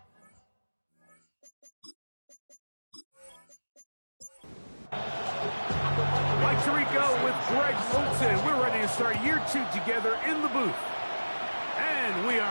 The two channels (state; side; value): inverted; both; correlation -1.00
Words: Mike Tirico with Greg Olsen. We're ready to start year two together in the booth. And we